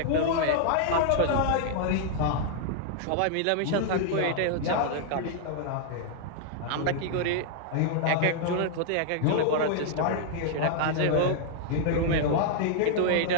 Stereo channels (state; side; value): different; both; correlation -0.01